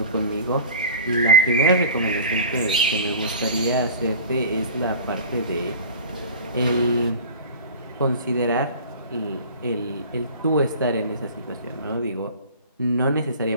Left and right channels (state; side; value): inverted; both; correlation -0.39